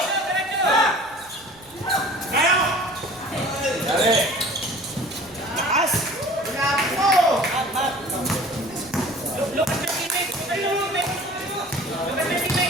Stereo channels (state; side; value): noise; right; rumble, 28 dB below the sound